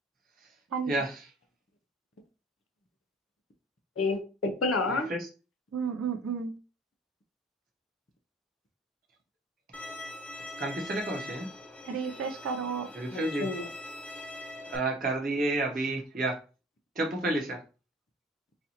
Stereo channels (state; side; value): normal; both; correlation 0.47